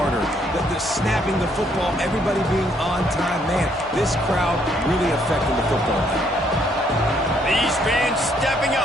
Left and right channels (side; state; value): both; normal; correlation 0.69